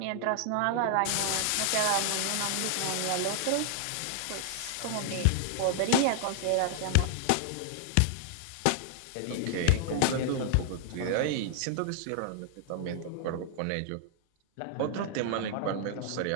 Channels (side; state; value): both; different; correlation -0.01